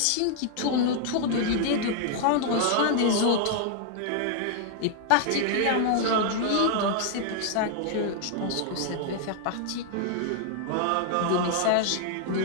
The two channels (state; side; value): different; both; correlation 0.00